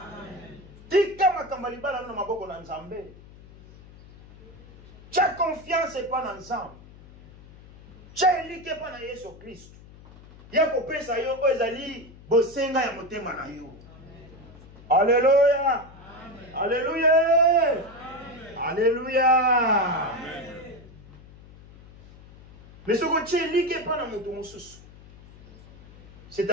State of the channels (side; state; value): left; noise; hum, 21 dB below the sound